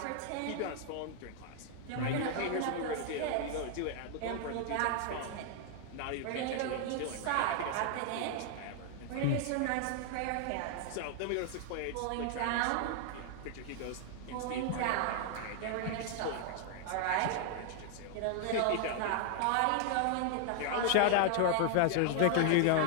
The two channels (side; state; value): both; different; correlation 0.00